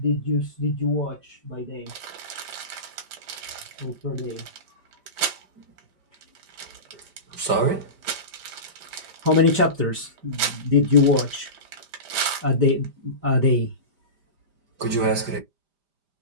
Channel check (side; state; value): left; late; 5.0 ms